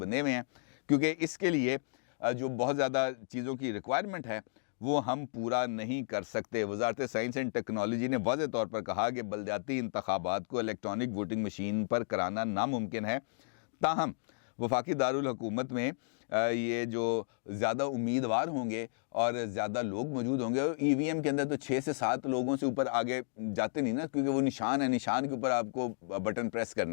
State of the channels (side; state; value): right; silent; digital silence